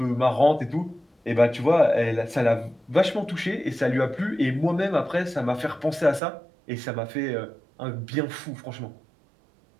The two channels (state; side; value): drops out; left; at 6.2 s